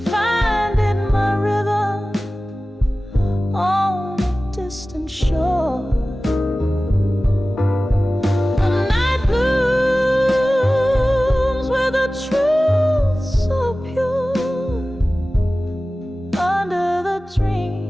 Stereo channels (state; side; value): normal; both; correlation 0.96